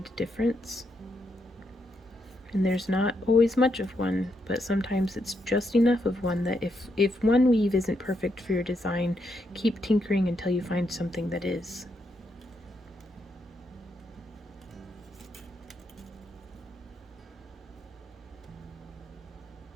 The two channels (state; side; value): normal; both; correlation 0.80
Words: difference. And there's not always much of one, but sometimes it's just enough of one that if one weave isn't perfect for your design, keep tinkering until you find something that is.